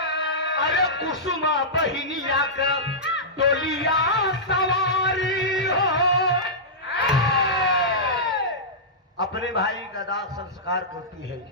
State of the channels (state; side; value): normal; both; correlation -0.14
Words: अरे कुसुमा बहिनिया का डोलिया सवारी हो। अपने भाई का दाह संस्कार करती है।